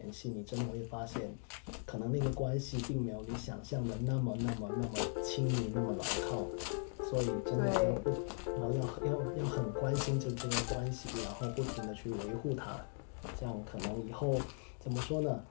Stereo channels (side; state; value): right; silent; 52 dB below the other